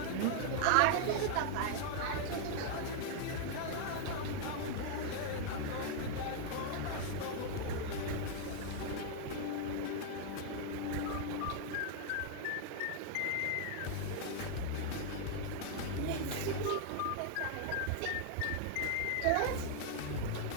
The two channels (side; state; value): both; different; correlation 0.00